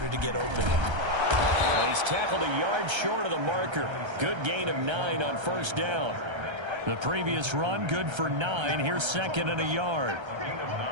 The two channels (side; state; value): left; late; 1.3 ms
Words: to get open. He's tackled a yard short of the marker. Good gain of 9 on 1st down. The previous run, good for 9. Here's 2nd and a yard. Gain of